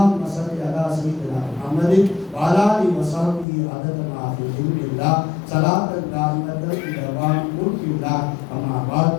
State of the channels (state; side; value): drops out; right; at 3.5 s